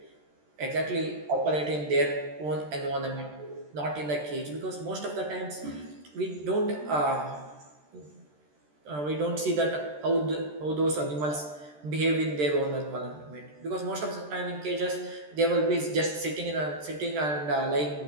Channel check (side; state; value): left; late; 13 ms